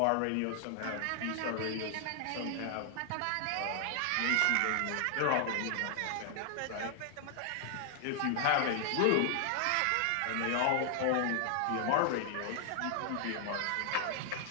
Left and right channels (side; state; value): both; different; correlation 0.00